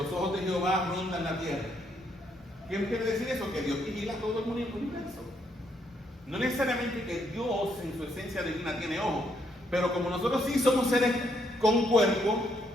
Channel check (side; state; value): both; normal; correlation 0.74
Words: ojos de Jehová rondan la tierra. ¿Qué quiere decir eso? Que Dios vigila todo el universo. No necesariamente que Dios en su esencia divina tiene ojos, pero como nosotros sí somos seres con cuerpo.